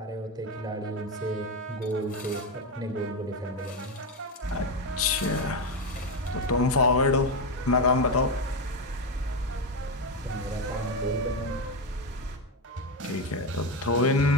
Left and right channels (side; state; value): both; normal; correlation 0.12